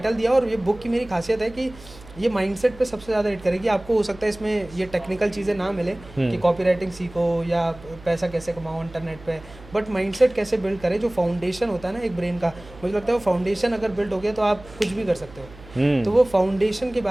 दिया। और ये बुक की मेरी खासियत है कि ये माइंडसेट पे सबसे ज़्यादा हिट करेगी। आपको हो सकता है इसमें ये टेक्निकल चीज़ें ना मिले कि कॉपी राइटिंग सीखो या पैसा कैसे कमाओ इंटरनेट पे, बट माइंडसेट कैसे बिल्ड करें, जो फाउंडेशन होता है ना एक ब्रेन का, मुझे लगता है वो फाउंडेशन अगर बिल्ड हो गया तो आप कुछ भी कर सकते हो। तो वो फाउंडेशन के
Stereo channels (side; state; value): right; noise; hum, 20 dB below the sound